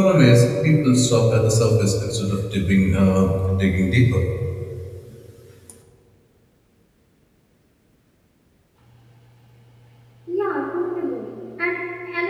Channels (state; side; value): identical; both; correlation 1.00